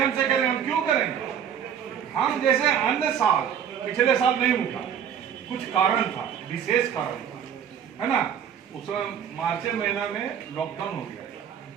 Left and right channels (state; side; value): quieter; left; 8.6 dB